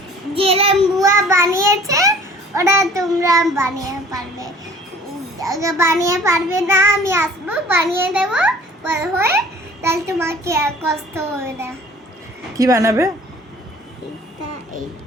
যেরকম বুয়া বানিয়েছে ওরা তোমরা বানিয়ে পারবে। বানিয়ে পারবে না আমি আসবো বানিয়ে দেবো বড় হয়ে, তাহলে তোমাকে আর কষ্ট হবে না। কি বানাবে? এইটা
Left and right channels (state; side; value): normal; both; correlation 0.49